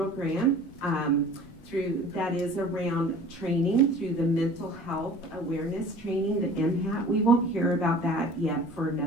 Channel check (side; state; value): both; normal; correlation 0.45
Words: grant that is around training through the mental health awareness training, the MHAT. We won't hear about that yet for